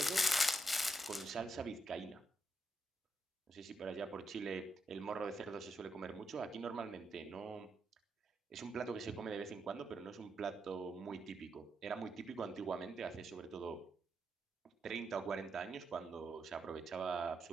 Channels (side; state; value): both; normal; correlation 0.82